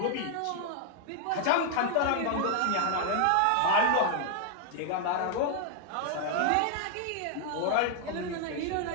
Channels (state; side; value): different; both; correlation 0.00